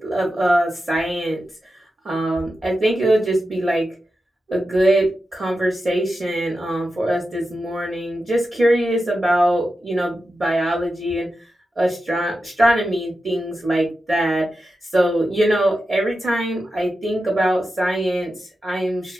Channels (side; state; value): both; normal; correlation 0.90